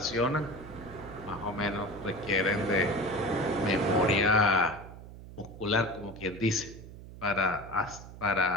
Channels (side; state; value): right; noise; hum, 15 dB below the sound